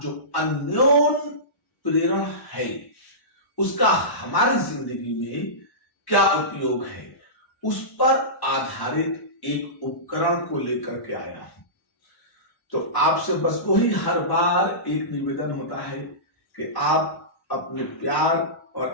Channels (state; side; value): late; right; 1.1 ms